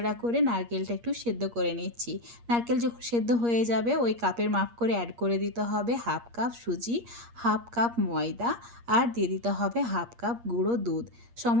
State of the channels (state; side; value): late; left; 8.5 ms